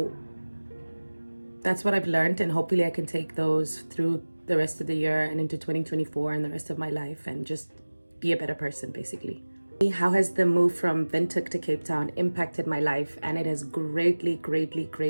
that's what I've learned, and hopefully I can take those through the rest of the year and into 2024 and the rest of my life and just be a better person, basically. How has the move from Windhoek to Cape Town impacted my life? And it has greatly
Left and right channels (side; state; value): both; inverted; correlation -1.00